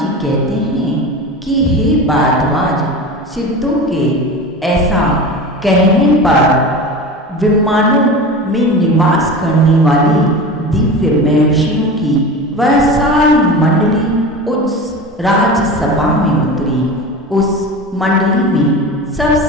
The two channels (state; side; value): normal; both; correlation 0.30